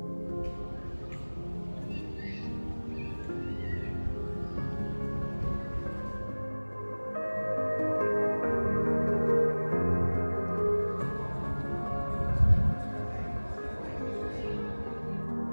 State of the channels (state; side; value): inverted; both; correlation -1.00